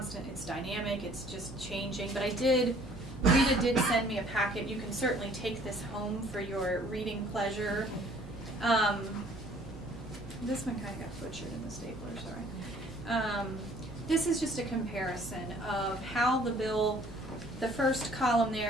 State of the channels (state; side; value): normal; both; correlation 0.56